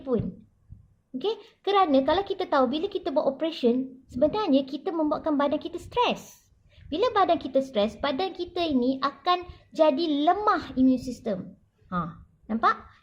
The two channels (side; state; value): both; identical; correlation 1.00